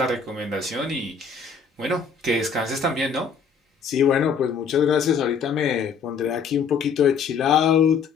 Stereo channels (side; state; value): right; quieter; 5.9 dB